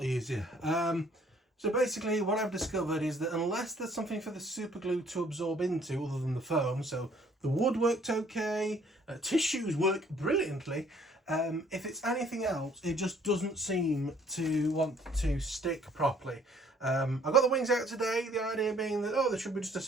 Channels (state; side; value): normal; both; correlation 0.60